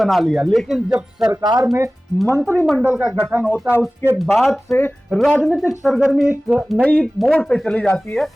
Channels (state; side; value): normal; both; correlation 0.97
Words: लिया, लेकिन जब सरकार में मंत्रिमंडल का गठन होता है उसके बाद से राजनीतिक सरगर्मी एक नई मोड़ पे चली जाती है।